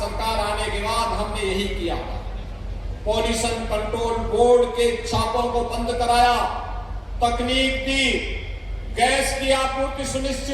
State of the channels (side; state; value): both; identical; correlation 1.00